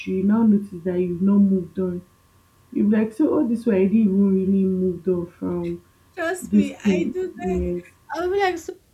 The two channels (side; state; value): both; identical; correlation 1.00